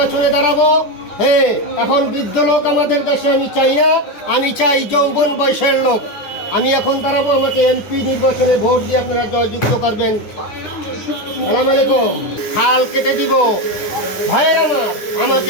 দাঁড়াবো। হ্যাঁ, এখন বৃদ্ধ লোক আমাদের দেশে আমি চাই না, আমি চাই যৌবন বয়সের লোক। আমি এখন দাঁড়াবো, আমাকে এমপি নির্বাচনে ভোট দিয়ে আপনারা জয়যুক্ত করবেন। সালাম আলাইকুম। হাল কেটে দিব ভাইয়ের আমার, আমাকে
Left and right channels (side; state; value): right; late; 9.7 ms